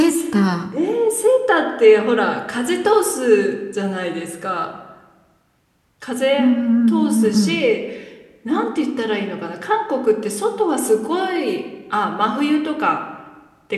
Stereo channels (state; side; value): identical; both; correlation 1.00